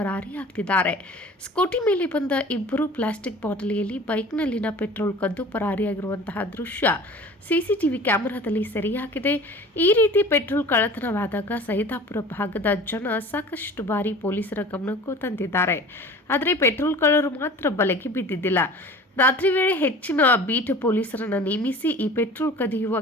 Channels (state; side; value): normal; both; correlation 0.42